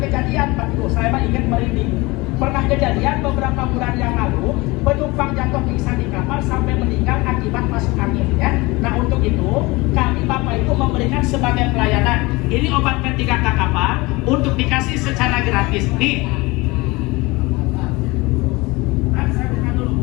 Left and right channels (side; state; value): right; quieter; 23.3 dB